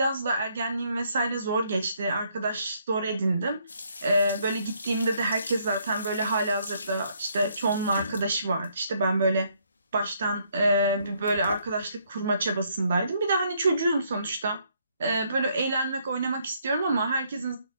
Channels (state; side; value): inverted; both; correlation -0.70